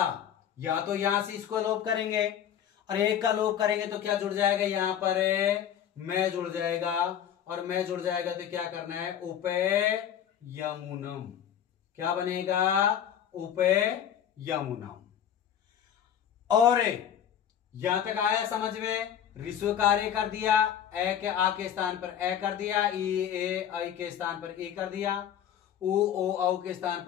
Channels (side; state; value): right; quieter; 9.5 dB